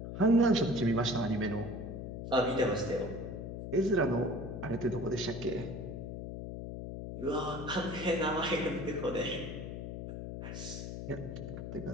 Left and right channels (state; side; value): noise; left; hum, 7 dB below the sound